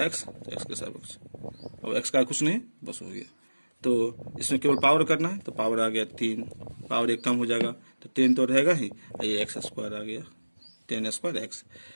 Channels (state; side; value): inverted; both; correlation -1.00